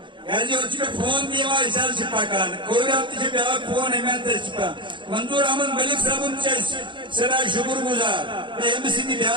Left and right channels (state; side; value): late; left; 0.23 ms